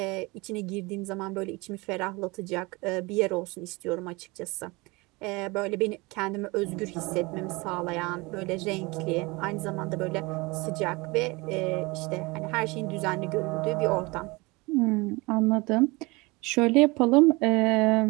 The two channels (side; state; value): left; quieter; 24.7 dB